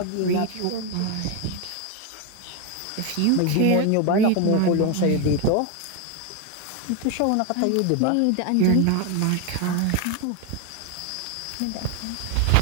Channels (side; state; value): both; different; correlation 0.01